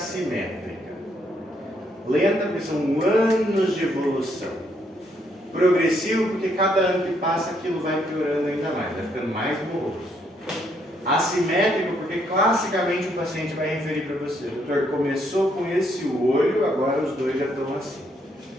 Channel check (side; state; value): both; normal; correlation 0.73